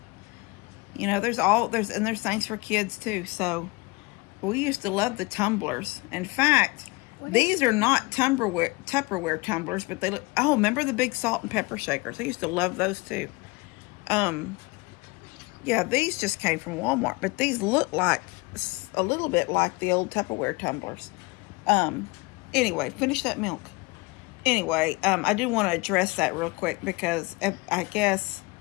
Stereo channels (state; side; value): quieter; right; 24.9 dB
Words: You know, there's things for kids too. So we used to love the tumblers. In fact, these are not Tupperware tumblers, but they look, oh, remember the big salt and pepper shakers? I used to love those too. Yeah, these just came from Walmart, but these look like a little bit like the old Tupperware tumblers. Anyway, finish that milk. Anyway, I do want to address that real quick because I guess